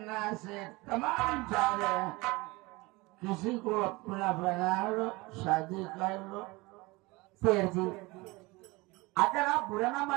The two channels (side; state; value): left; quieter; 23.2 dB